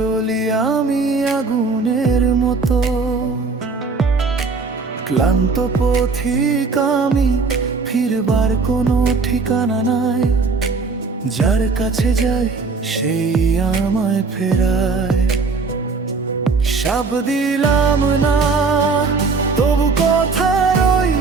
আমি আগুনের মতো। ক্লান্ত পথিক আমি, ফিরবার কোনো ঠিকানা নাই, যার কাছে যাই সেই আমায় ফেরায়। সাব দিলাম না তবু কথা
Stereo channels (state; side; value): quieter; left; 4.4 dB